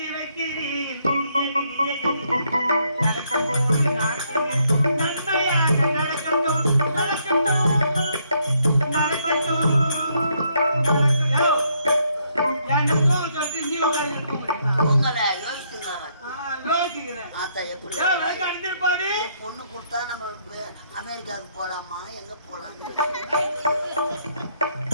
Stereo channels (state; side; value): inverted; both; correlation -0.72